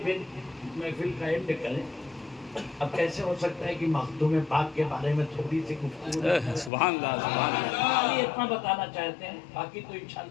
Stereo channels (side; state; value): right; drops out; at 6.7 s